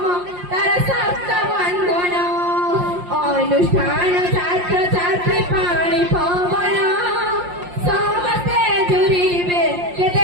তার সপ্ত বন্ধন অনুষ্ঠান ছাত্র ছাত্রী পানি পবন সমস্তে জুড়িবে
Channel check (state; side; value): late; left; 5.7 ms